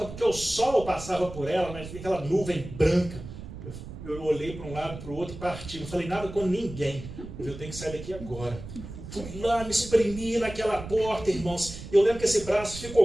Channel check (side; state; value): right; noise; rumble, 12 dB below the sound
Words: porque o sol passava por ela, mas aquela nuvem branca. Eu olhei para um lado, para o outro e parti. Não falei nada com ninguém. Eu tenho que sair daqui agora. Fui lá, me espremi naquela porta, irmãos. Eu lembro que esse braço